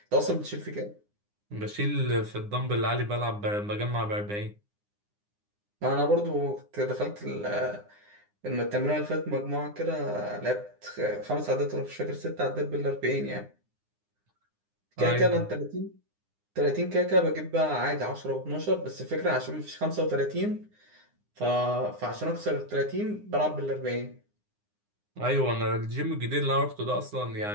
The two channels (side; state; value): left; late; 9.8 ms